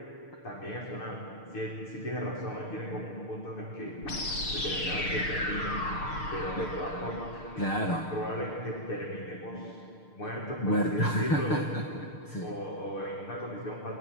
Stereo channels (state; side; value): late; right; 6.6 ms